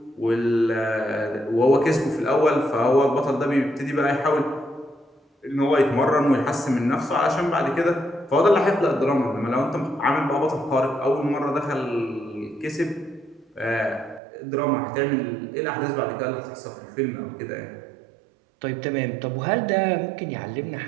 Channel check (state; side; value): drops out; left; at 14.2 s